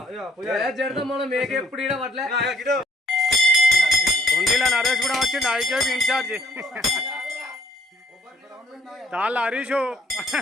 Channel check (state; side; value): normal; both; correlation 0.64